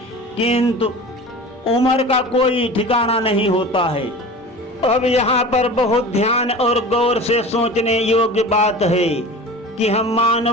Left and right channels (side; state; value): both; normal; correlation 0.36